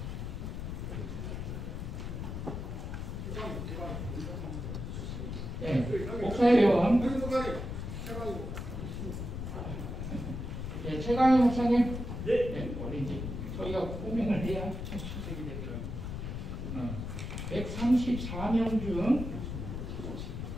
네, 목사회원. 네, 최강희 목사님. 네, 우리 이제 저희가 호명을 해야 출석이 되더라고요. 134명 중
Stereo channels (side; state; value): left; noise; rumble, 5 dB below the sound